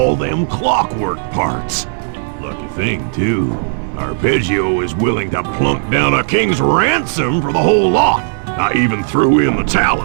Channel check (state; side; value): silent; left; digital silence